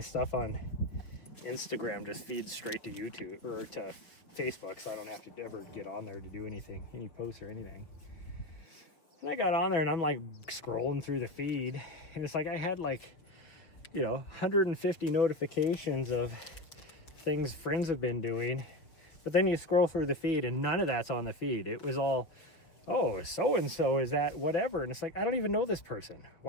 on Instagram just feeds straight to YouTube or to Facebook, so I don't have to ever get on there to do anything, any posts or anything. And I got on there and I'm like scrolling through the feed, and it's like I had like, 150 notifications of things friends have been doing. But then you scroll through the feed and none of that's on the feed. It was all, oh, so-and-so is that whatever. And it's like, I don't even know this person.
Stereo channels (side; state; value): right; late; 6.2 ms